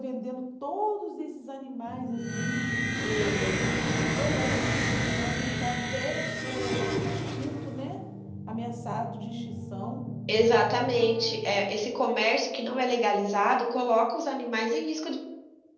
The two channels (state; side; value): identical; both; correlation 1.00